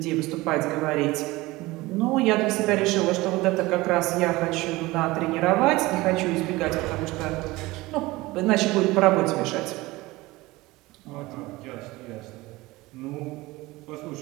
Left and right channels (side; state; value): left; quieter; 20.4 dB